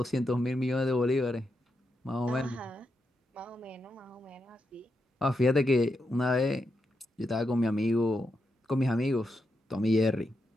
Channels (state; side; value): normal; both; correlation 0.84